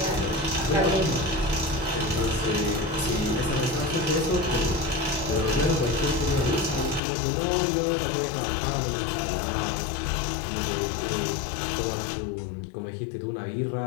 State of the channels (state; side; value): drops out; right; at 7.0 s